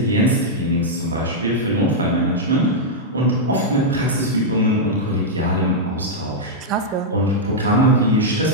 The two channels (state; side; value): normal; both; correlation -0.05